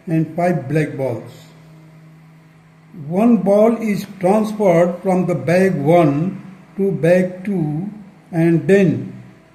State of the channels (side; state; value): both; identical; correlation 1.00